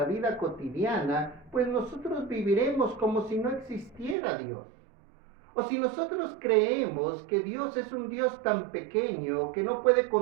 vida cotidiana, pues nosotros viviremos como si no existiera Dios. O si nosotros creemos que Dios es un Dios tan pequeño que no puede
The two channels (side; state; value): left; drops out; at 4.2 s